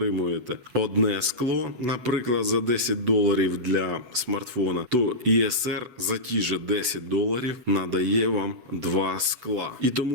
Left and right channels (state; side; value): late; left; 8.1 ms